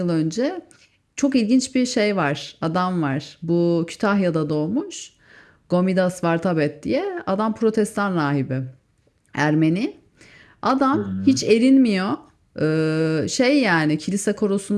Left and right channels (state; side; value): identical; both; correlation 1.00